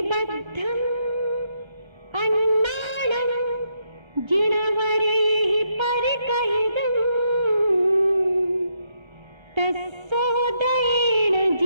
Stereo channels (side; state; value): left; late; 1.3 ms